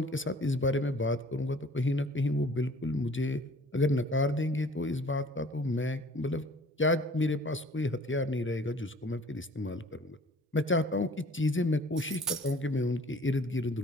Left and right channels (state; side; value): normal; both; correlation 0.51